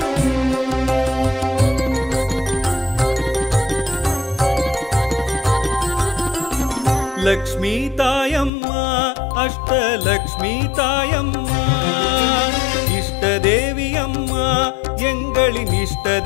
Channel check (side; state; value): right; drops out; at 8.5 s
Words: லக்ஷ்மி தாயம்மா அஷ்டலக்ஷ்மி தாயம்மா இஷ்ட தேவி அம்மா எங்களின் இஷ்ட